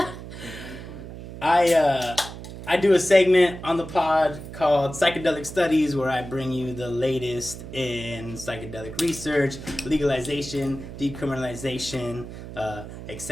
I do a segment on the pod called Psychedelic Studies, where I bring you the latest in psychedelic research, legalization, decriminalization,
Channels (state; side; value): noise; right; hum, 12 dB below the sound